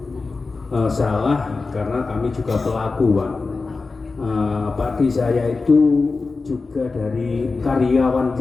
salah karena kami juga pelaku Pak. Padi saya itu juga dari karyawan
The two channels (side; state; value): right; quieter; 4.0 dB